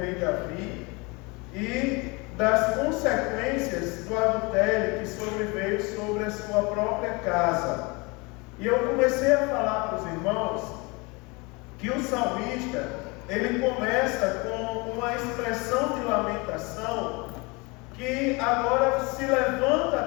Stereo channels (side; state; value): right; quieter; 27.4 dB